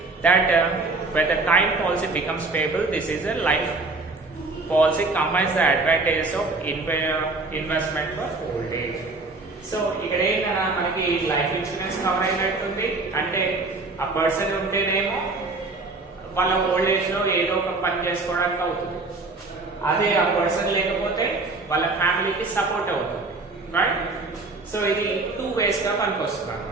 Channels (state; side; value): quieter; left; 3.5 dB